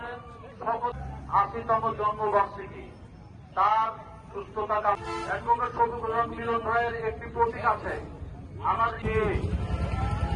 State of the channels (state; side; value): identical; both; correlation 1.00